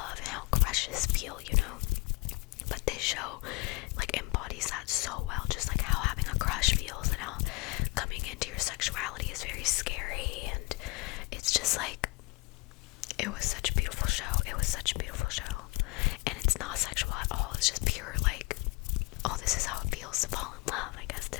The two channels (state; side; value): quieter; right; 25.7 dB